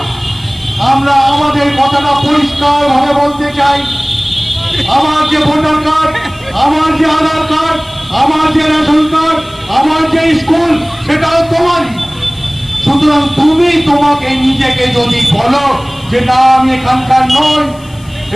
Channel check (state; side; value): noise; left; hiss, 25 dB below the sound